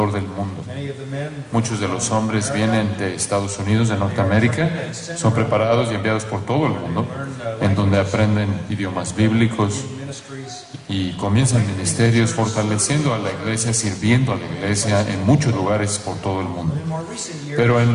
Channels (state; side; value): identical; both; correlation 1.00